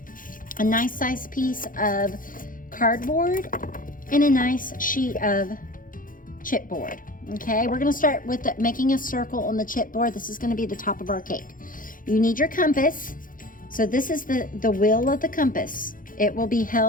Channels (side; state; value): right; late; 0.40 ms